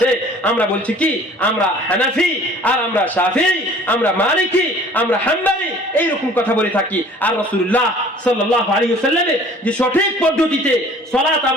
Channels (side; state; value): both; normal; correlation 0.51